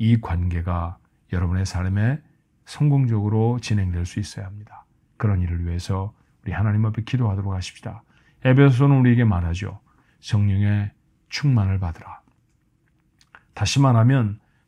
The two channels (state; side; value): identical; both; correlation 1.00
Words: 관계가 여러분의 삶에 성공적으로 진행될 수 있어야 합니다. 그런 일을 위해서 우리 하나님 앞에 기도하도록 하십시다. 에베소서는 우리에게 말하죠. 성령의 충만을 받으라. 다시 말하면